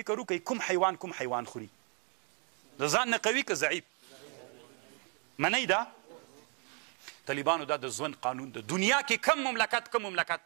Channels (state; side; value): quieter; left; 36.2 dB